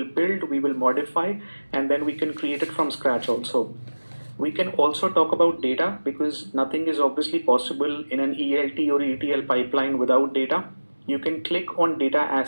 build, we will modify, and then we can create it from scratch also. We can also talk about data because nothing is obviously possible in an ELT or ETL pipeline without data. You can click on data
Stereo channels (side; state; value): both; inverted; correlation -1.00